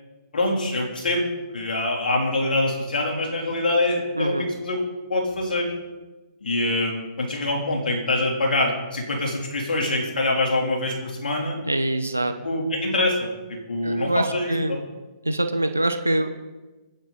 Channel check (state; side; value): inverted; both; correlation -0.66